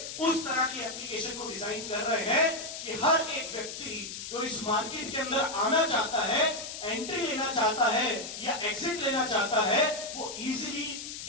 उस तरह की एप्लीकेशन को डिजाइन कर रहे हैं कि हर एक व्यक्ति जो इस मार्केट के अंदर आना चाहता है, एंट्री लेना चाहता है या एग्जिट लेना चाहता है, वो इजीली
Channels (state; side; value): noise; left; hiss, 8 dB below the sound